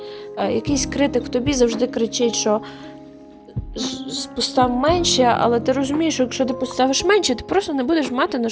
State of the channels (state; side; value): identical; both; correlation 1.00